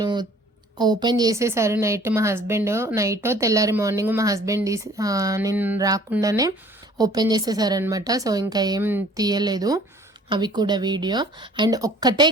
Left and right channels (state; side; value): normal; both; correlation 0.53